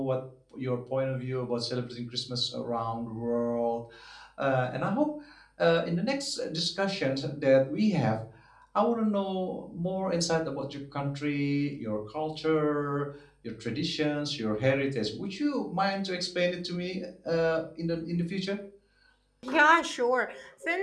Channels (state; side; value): identical; both; correlation 1.00